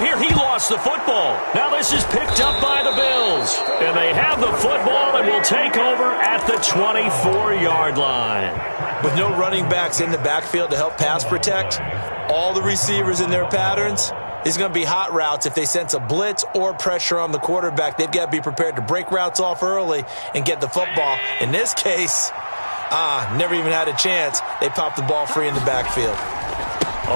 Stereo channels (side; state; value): both; inverted; correlation -1.00